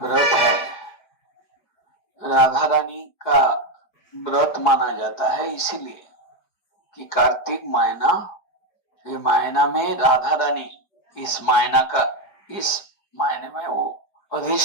व्रत है। राधा रानी का व्रत माना जाता है इसीलिए कि कार्तिक महीना, ये महीना में राधा रानी इस महीने में वो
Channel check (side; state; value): right; late; 4.9 ms